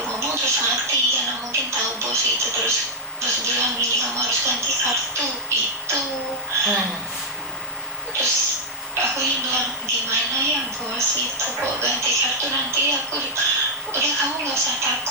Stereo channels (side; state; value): both; normal; correlation -0.11